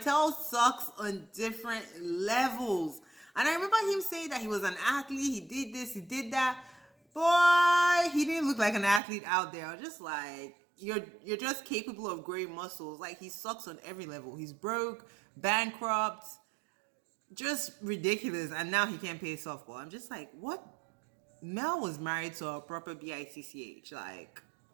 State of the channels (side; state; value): left; drops out; at 9.0 s